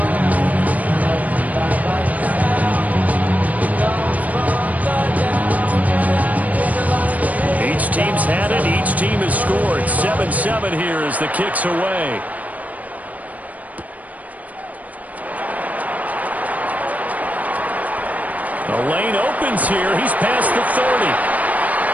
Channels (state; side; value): late; left; 0.073 ms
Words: Each team's had it. Each team has scored. 7-7 here as the kick's away. The lane opens here. He's past the 30.